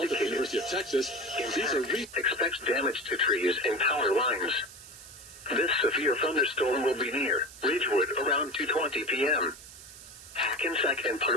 at the University of Texas. Expects damage to trees and power lines. This severe thunderstorm will be near Ridgewood around 2:20 p.m. Hackensack and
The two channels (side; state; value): right; noise; hiss, 17 dB below the sound